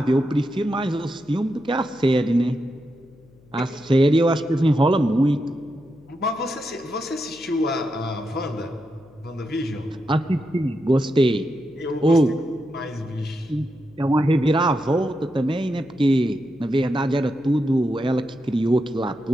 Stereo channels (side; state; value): left; noise; hum, 28 dB below the sound